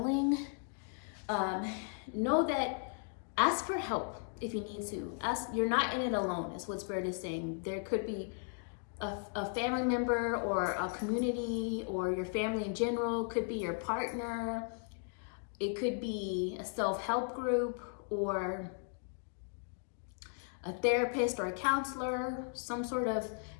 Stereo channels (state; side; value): silent; right; 54 dB below the other